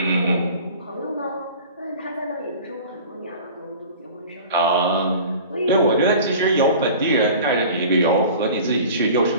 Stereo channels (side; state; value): both; inverted; correlation -0.41